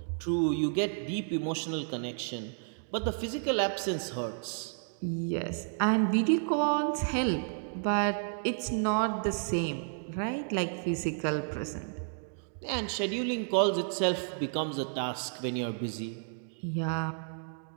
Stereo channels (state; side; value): silent; left; digital silence